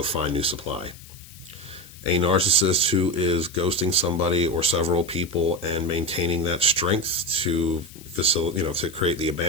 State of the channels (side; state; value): left; noise; hiss, 20 dB below the sound